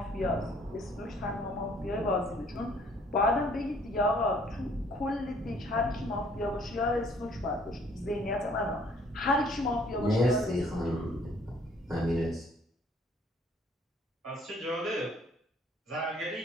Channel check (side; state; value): both; normal; correlation 0.60